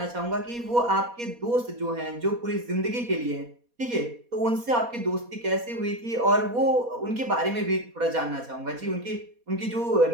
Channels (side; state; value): left; late; 4.2 ms